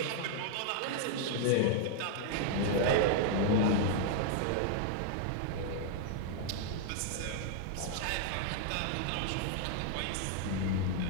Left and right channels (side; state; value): both; different; correlation 0.00